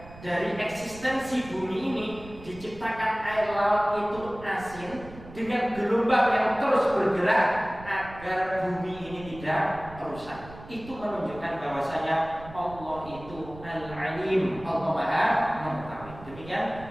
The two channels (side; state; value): right; noise; rumble, 16 dB below the sound